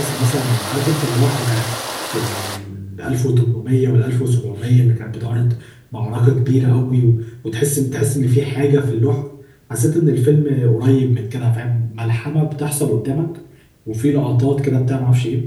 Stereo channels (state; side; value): identical; both; correlation 1.00